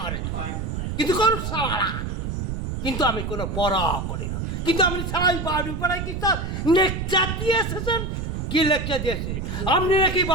করে কিন্তু করুক সারা, কিন্তু আমি কোনো পড়া করি না। কিন্তু আপনি সারাই বাড়ি পাড়ায় কি স্যার লেকচার দিয়ে এসেছেন? কি লেকচার দিয়েছি? আপনি নাকি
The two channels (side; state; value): right; noise; rumble, 3 dB below the sound